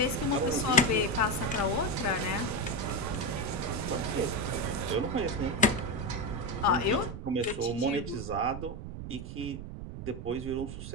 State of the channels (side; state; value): right; noise; rumble, 9 dB below the sound